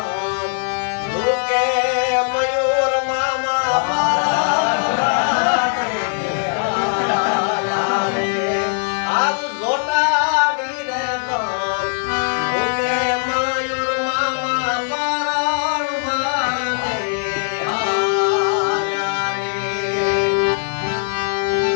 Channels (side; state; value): right; silent; 66 dB below the other